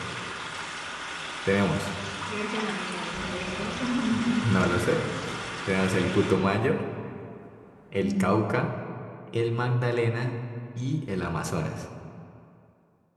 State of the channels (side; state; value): both; identical; correlation 1.00